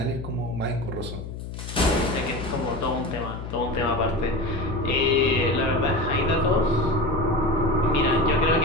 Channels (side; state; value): left; noise; hum, 9 dB below the sound